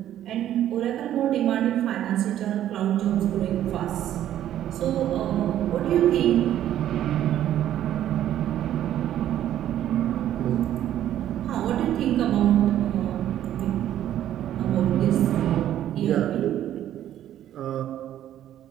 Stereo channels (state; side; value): quieter; left; 11.7 dB